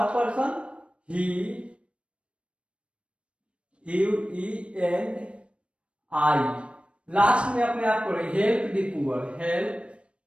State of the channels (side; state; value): left; late; 0.060 ms